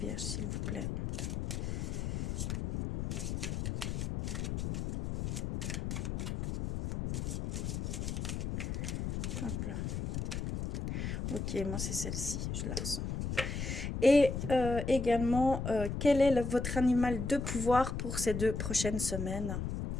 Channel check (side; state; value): left; noise; rumble, 3 dB below the sound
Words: s'il vous plaît. Hop là. Ok, moi, c'est celle-ci, je la ressens. Et également, quel est votre animal de pouvoir pour ces 2 prochaines semaines?